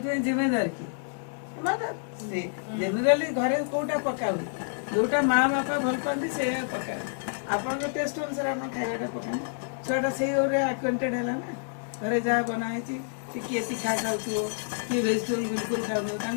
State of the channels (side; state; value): right; silent; digital silence